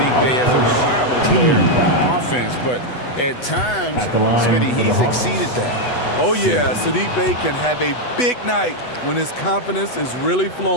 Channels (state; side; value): late; right; 8.1 ms